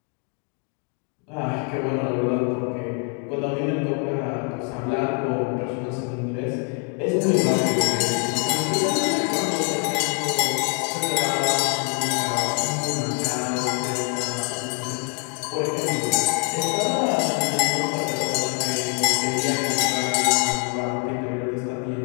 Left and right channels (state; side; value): quieter; right; 38.1 dB